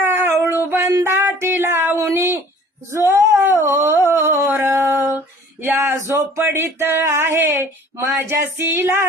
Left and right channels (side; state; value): both; normal; correlation 0.50